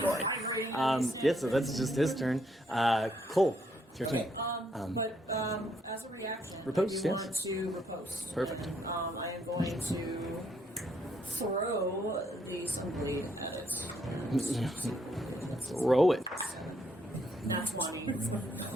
Yeah, so that's just his turn. Cole, it's your turn. But as a reaction, Riposte, if you yes. want to riposte. Perfect. I am going to throw the sunblade at it. Throw it. Not 20.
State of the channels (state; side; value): normal; both; correlation 0.72